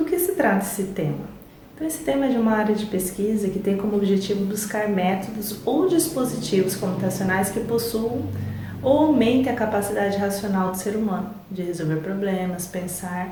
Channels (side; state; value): both; identical; correlation 1.00